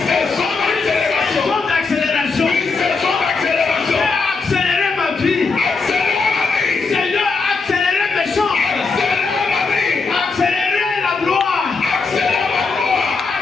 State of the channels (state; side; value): quieter; right; 4.4 dB